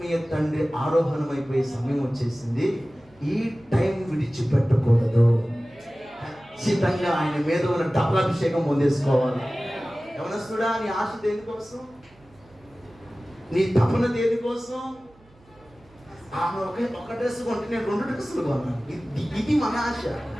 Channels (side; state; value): right; noise; hum, 29 dB below the sound